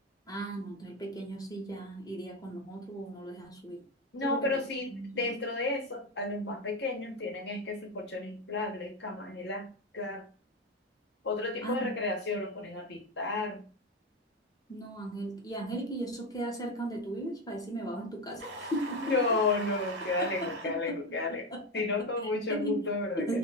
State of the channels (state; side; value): normal; both; correlation 0.16